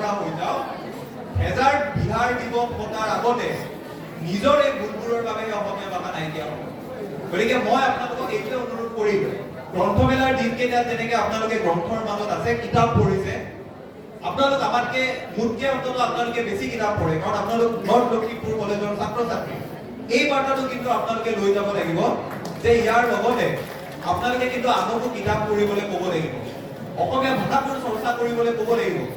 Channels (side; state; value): both; identical; correlation 1.00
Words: হৈ যাওঁ, হেজাৰ বিহাৰ দিৱস পতাৰ আগতে নিজৰ এই ভুলবোৰৰ বাবে অসমীয়া ভাষা নাইকিয়া হ'ব। গতিকে মই আপোনালোকক এইটোৱে অনুৰোধ কৰিম, গ্ৰন্থমেলাৰ দিনকেইটাত যেনেকে আপোনালোকে গ্ৰন্থৰ মাজত আছে, কিতাপ পঢ়িছে, আপোনালোক আমাতকে মোতকে অন্তত আপোনালোকে বেছি কিতাপ পঢ়ে, কাৰণ আপোনালোক নৰ্থ লখিমপুৰ কলেজৰ ছাত্ৰ-ছাত্ৰী। এই বাৰ্তাটো কিন্তু আপোনালোকে লৈ যাব লাগিব যে ইয়াৰ লগতে আপোনালোকে কিন্তু আনকো কিতাপ পঢ়িবলৈ ক'ব লাগিব, অসমীয়া ভাষাটোৰ চৰ্চা কৰিবলৈ ক'ব লাগিব।